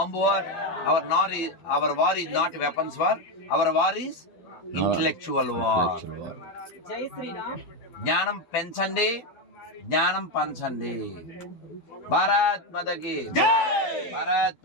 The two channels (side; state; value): right; late; 12 ms